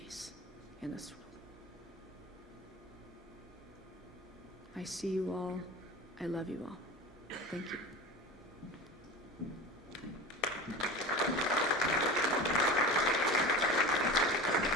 in this world. I see you all. I love you all. Thank you.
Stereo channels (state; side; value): normal; both; correlation 0.32